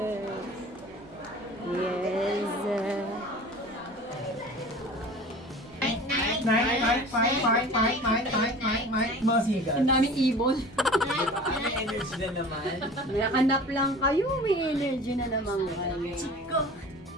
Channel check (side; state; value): both; normal; correlation 0.41